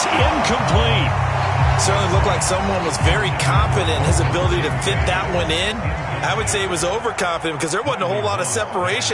incomplete. Certainly looked like someone was very confident in his ability to fit that one in. I would say he was overconfident because there wasn't a whole lot of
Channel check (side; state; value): both; identical; correlation 1.00